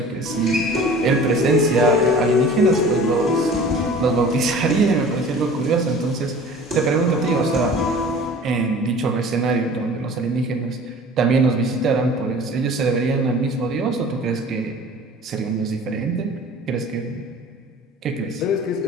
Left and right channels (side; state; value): both; normal; correlation 0.43